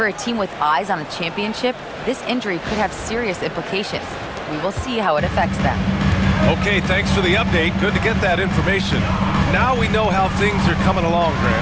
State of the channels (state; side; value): identical; both; correlation 1.00